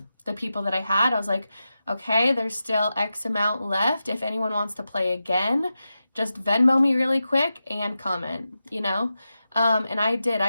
the people that I had, I was like, okay, there's still X amount left. If anyone wants to play again, just Venmo me really quick and comment, you know? And I did.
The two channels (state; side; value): inverted; both; correlation -0.91